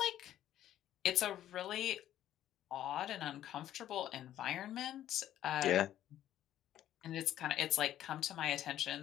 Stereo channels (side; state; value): right; quieter; 12.1 dB